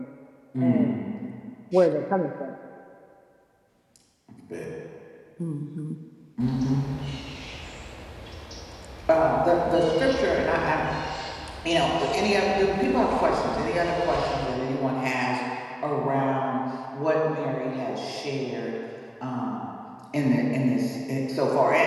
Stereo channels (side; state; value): both; identical; correlation 1.00